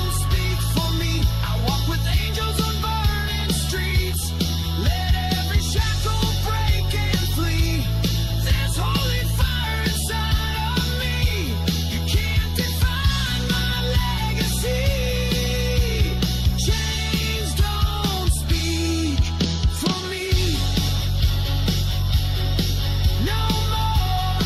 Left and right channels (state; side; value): identical; both; correlation 1.00